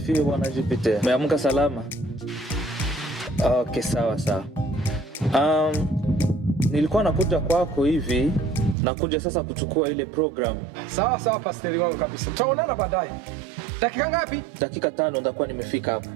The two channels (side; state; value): left; drops out; at 8.8 s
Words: Bwana Jupiter. Umeamka salama? Okay, sawa sawa. Nilikuwa nakuja kwako hivi, nakuja sasa kuchukua ile program. Sawa sawa, pastor wangu kabisa. Tutaonana baadaye. Dakika ngapi? Dakika 5 ndakuwa nimefika hapo.